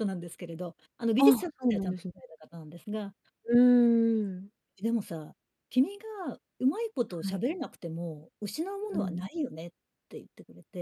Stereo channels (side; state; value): both; identical; correlation 1.00